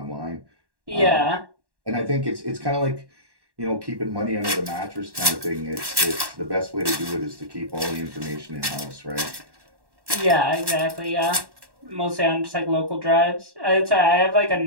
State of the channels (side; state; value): left; late; 1.1 ms